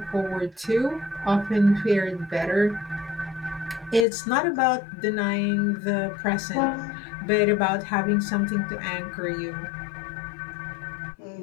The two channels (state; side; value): drops out; right; at 4.0 s